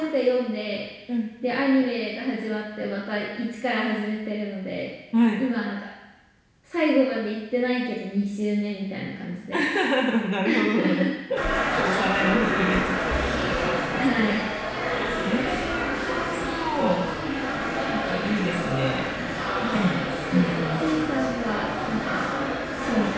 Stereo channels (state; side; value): identical; both; correlation 1.00